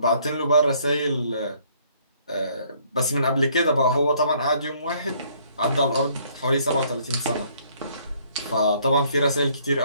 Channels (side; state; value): both; inverted; correlation -0.63